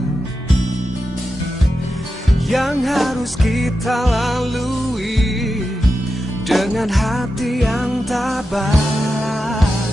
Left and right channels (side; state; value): both; normal; correlation 0.90